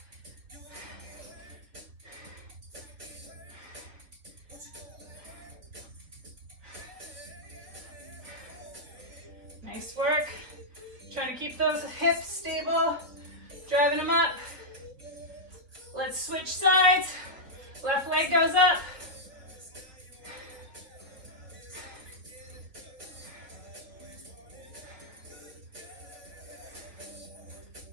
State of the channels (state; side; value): late; left; 4.0 ms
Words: Nice work. Trying to keep those hips stable. Driving them up. Let's switch sides. Left leg goes up.